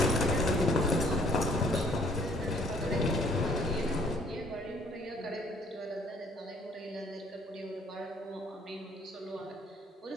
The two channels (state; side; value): normal; both; correlation 0.60